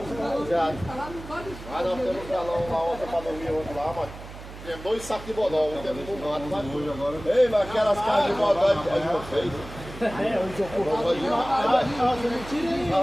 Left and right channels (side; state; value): right; noise; hum, 14 dB below the sound